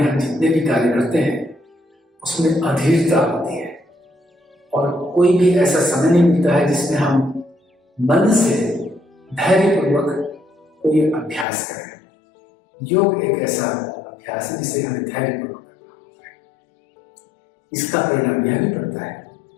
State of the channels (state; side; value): drops out; right; at 11.5 s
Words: हम जितने भी कार्य करते हैं उसमें अधीरता होती है और कोई भी ऐसा समय नहीं मिलता है जिसमें हम मन से धैर्यपूर्वक कोई अभ्यास करें। योग एक ऐसा अभ्यास है जिसे हमें धैर्यपूर्वक करना होता है। इसका परिणाम यह भी पड़ता है